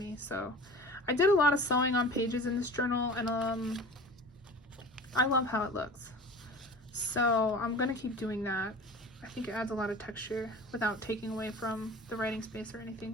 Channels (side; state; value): both; normal; correlation 0.39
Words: So I did a lot of sewing on pages in this journal, and I love how it looks. So I'm gonna keep doing that. I think it adds a lot of texture without taking away from the writing space or